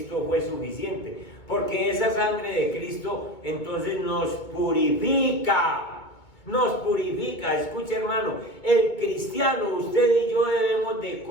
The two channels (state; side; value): late; right; 2.2 ms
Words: fue suficiente, porque esa sangre de Cristo entonces nos purifica. nos purifica. Escuche, hermano, el cristiano, usted y yo debemos de